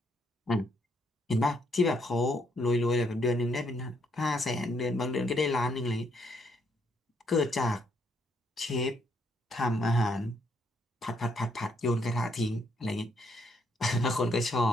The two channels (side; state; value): both; normal; correlation 0.73